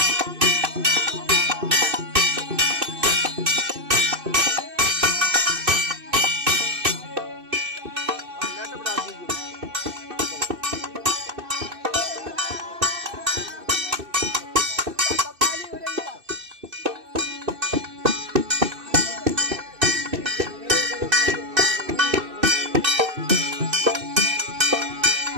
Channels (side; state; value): left; late; 2.6 ms